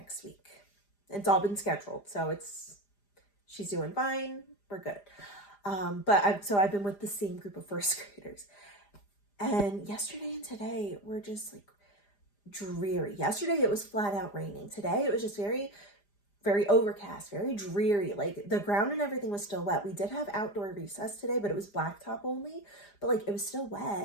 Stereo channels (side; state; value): right; late; 4.9 ms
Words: week. It's all been scheduled. So she's doing fine. We're good. So I've been with the same group of first graders. And yesterday and today were just like dreary. Yesterday it was flat out raining. Today it was just very, very overcast, very dreary. Like the ground and everything was still wet. We did have outdoor recess today, but it was blacktop only. But like it was still